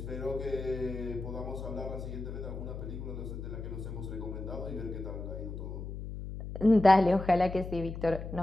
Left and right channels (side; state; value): left; noise; hum, 7 dB below the sound